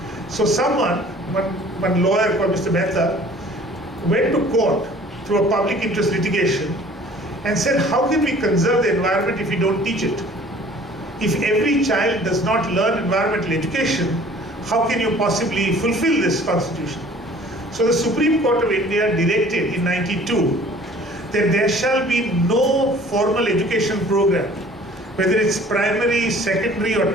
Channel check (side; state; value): both; normal; correlation 0.51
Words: So one lawyer called Mr. Mehta went to court through a public interest litigation and said, how can we conserve the environment if we don't teach it? If every child does not learn environmental education, how can you possibly fulfill this constitution? So the Supreme Court of India directed in 92 that there shall be no formal education program, whether it's primary, secondary, or